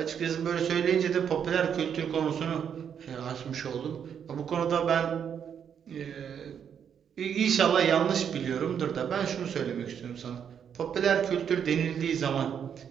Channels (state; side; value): quieter; left; 8.0 dB